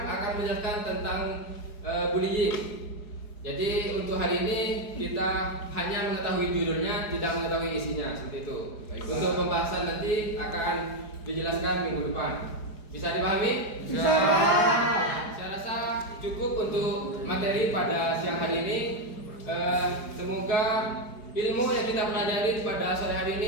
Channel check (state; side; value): late; right; 4.8 ms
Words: akan menjelaskan tentang bullying. Jadi untuk hari ini kita hanya mengetahui judulnya, tidak mengetahui isinya, seperti itu. Untuk pembahasan nanti akan dijelaskan minggu depan. Bisa dipahami? Bisa. Saya rasa cukup untuk materi pada siang hari ini. Semoga ilmu yang kita pelajari pada sore hari